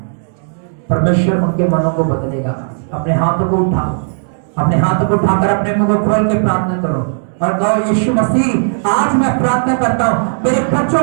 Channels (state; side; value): silent; left; digital silence